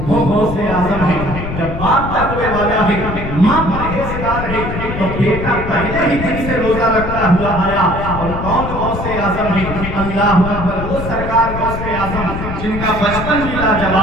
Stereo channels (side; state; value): left; noise; rumble, 6 dB below the sound